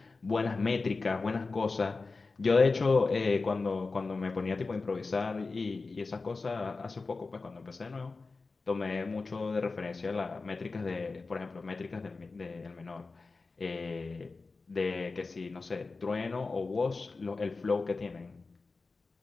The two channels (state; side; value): quieter; right; 3.9 dB